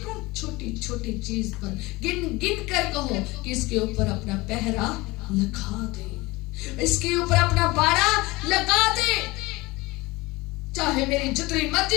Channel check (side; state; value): right; quieter; 22.0 dB